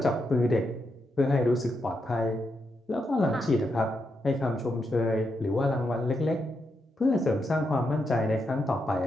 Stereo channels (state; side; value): normal; both; correlation 0.83